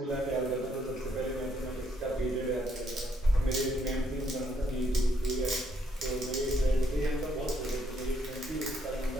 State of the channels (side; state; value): both; normal; correlation 0.72